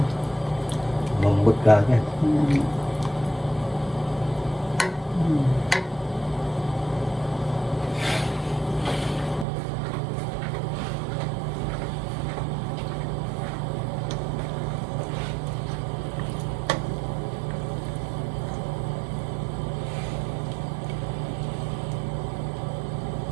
mambot ka agad.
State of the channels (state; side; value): drops out; left; at 9.5 s